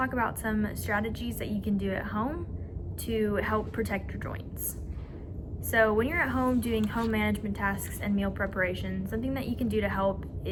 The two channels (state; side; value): identical; both; correlation 1.00